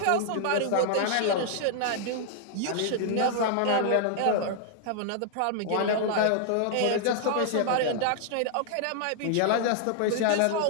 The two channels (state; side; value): different; both; correlation 0.00